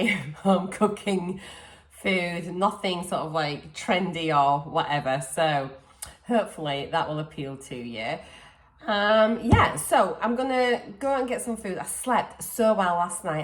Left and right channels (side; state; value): both; identical; correlation 1.00